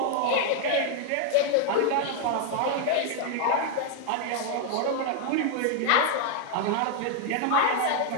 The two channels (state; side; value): different; both; correlation 0.00